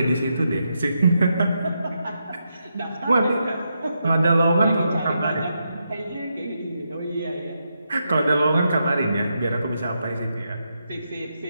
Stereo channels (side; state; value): both; inverted; correlation -0.83